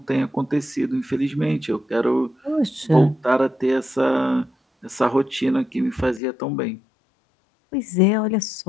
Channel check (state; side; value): drops out; right; at 6.2 s